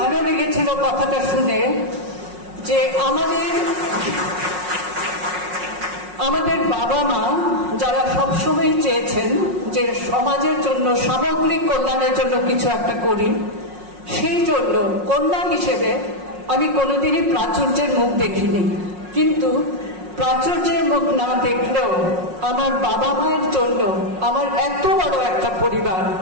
লেগেছিল কথাটা শুনে যে আমাদের বাবা মা যারা সবসময় চেয়েছেন যে সমাজের জন্য, সামগ্রিক কল্যাণের জন্য কিছু একটা করি, সেই জন্য কন্যা হিসেবে আমি কোনোদিনই প্রাচুর্যের মুখ দেখিনি। কিন্তু প্রাচুর্যের মুখ না দেখলেও আমার বাবা মায়ের জন্য আমার এত বড় একটা পরিবার,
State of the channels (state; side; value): late; left; 5.5 ms